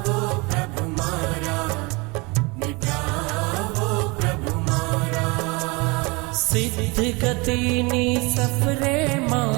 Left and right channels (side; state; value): left; quieter; 27.0 dB